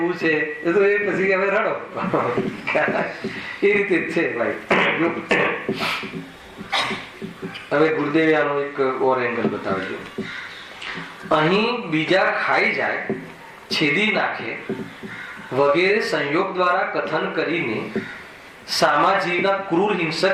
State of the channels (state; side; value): identical; both; correlation 1.00